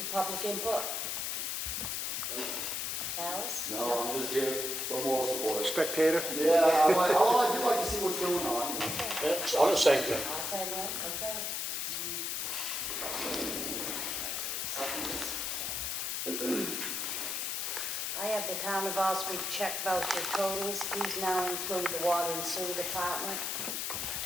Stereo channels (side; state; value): left; noise; hiss, 1 dB below the sound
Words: public input. Alice? No, I'm just here for moral support. Spectator? Yeah, I do like to see what's going on. It's on the same thing. I'll say that, okay. I have the town of Ossipee check voucher totals. These now include the water and sewer department.